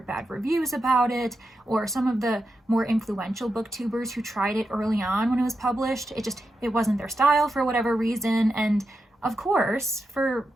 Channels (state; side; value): normal; both; correlation 0.88